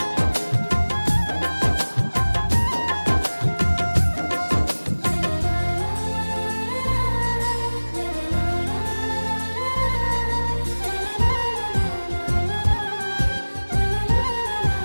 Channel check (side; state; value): both; inverted; correlation -1.00